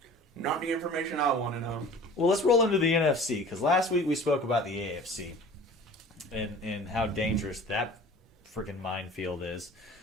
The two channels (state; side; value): normal; both; correlation 0.44